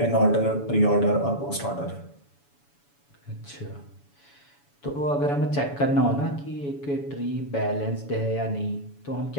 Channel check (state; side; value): late; right; 7.1 ms